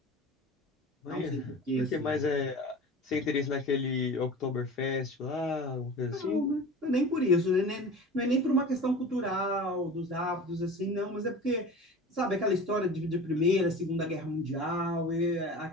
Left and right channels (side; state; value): both; normal; correlation 0.37